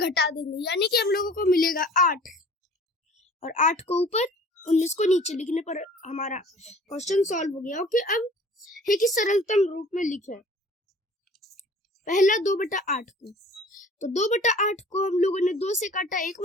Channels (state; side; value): normal; both; correlation 0.48